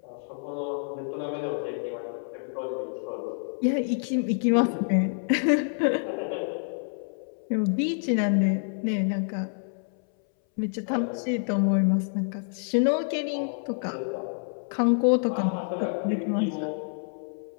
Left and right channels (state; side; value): silent; right; 60 dB below the other